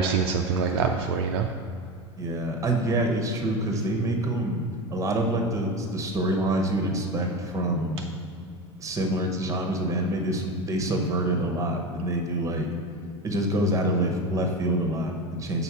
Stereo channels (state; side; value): normal; both; correlation 0.22